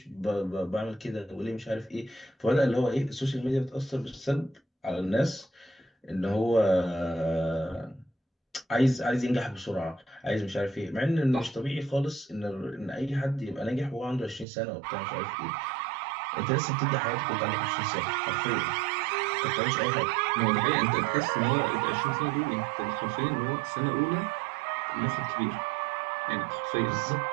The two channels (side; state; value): left; drops out; at 14.5 s